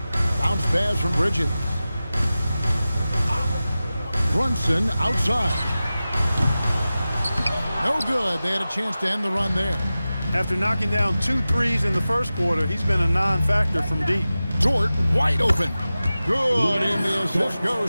Bounce pass from Bridges. Brunson outside. No good. They had a chance to end the run there. After knocking down 2 threes in the first quarter, he's been a non-factor from deep. Dort wide open. Good, and the assist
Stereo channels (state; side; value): inverted; both; correlation -0.95